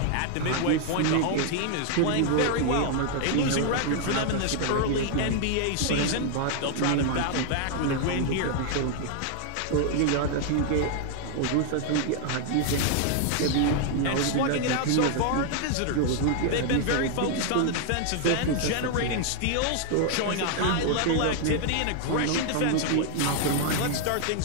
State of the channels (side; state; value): both; different; correlation 0.00